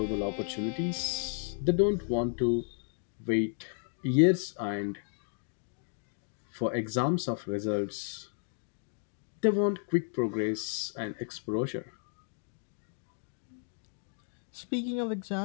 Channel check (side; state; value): right; silent; 56 dB below the other